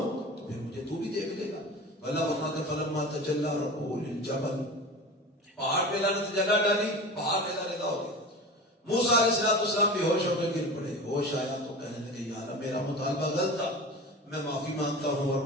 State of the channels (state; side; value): normal; both; correlation 0.32